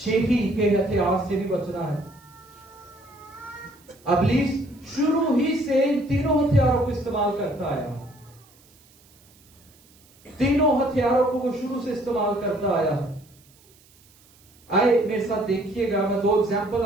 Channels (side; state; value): right; noise; hiss, 29 dB below the sound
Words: के हथियार से भी बचना है। इब्लीस शुरू ही से इन तीनों हथियारों को इस्तेमाल करता आया। तीनों हथियारों को वो शुरू से इस्तेमाल करता आया। आए मेरे साथ देखिएगा, मैं 2 एग्जाम्पल